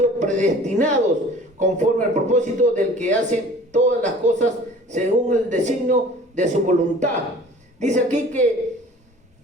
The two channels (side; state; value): both; normal; correlation 0.47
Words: predestinados conforme al propósito del que hace todas las cosas según el designio de su voluntad. Dice aquí que